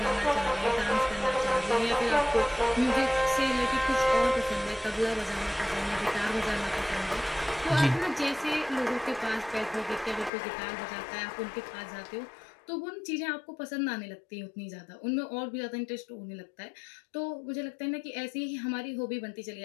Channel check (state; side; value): drops out; right; at 10.3 s